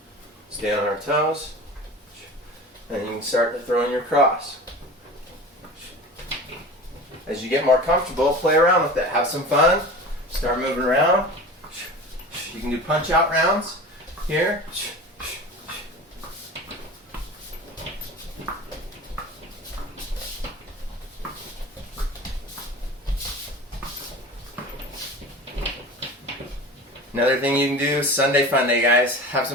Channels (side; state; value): both; normal; correlation 0.35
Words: Stay on our toes, and you can start to throw in your cross. As you get more comfortable, play around with it. Have some fun. Start moving around. You can do punch out rounds here. Another thing you can do, Sunday Fun Day, guys. Have